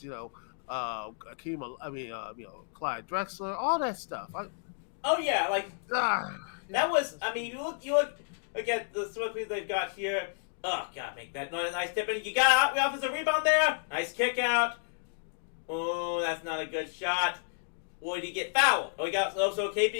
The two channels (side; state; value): right; silent; digital silence